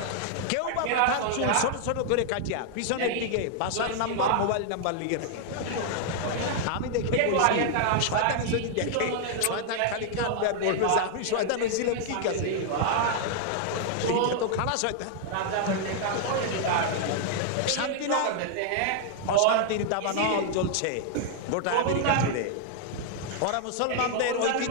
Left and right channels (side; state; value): both; different; correlation 0.00